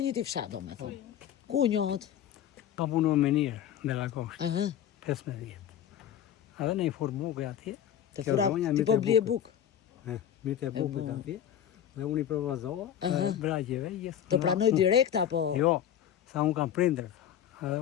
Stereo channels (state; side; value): quieter; right; 10.1 dB